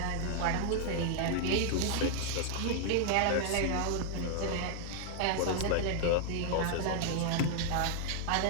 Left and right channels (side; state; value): both; different; correlation 0.00